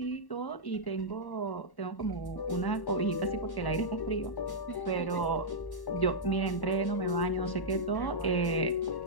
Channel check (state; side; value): late; right; 1.1 ms